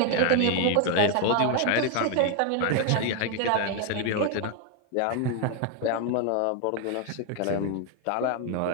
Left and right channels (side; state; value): both; different; correlation 0.01